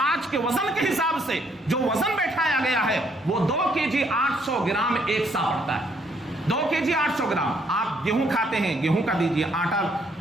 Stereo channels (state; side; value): normal; both; correlation 0.69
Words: آج کے وزن کے حساب سے جو وزن بیٹھایا گیا ہے وہ 2 kg 800 گرام ایک سا پڑتا ہے. 2 kg 800 گرام. آپ گیہوں کھاتے ہیں, گیہوں کا دیجیے, آٹا